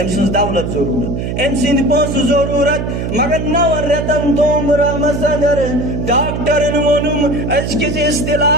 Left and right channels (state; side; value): noise; right; hum, 3 dB below the sound